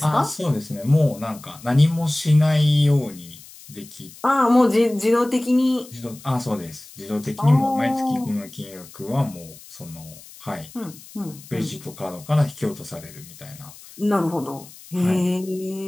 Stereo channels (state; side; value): noise; left; hiss, 20 dB below the sound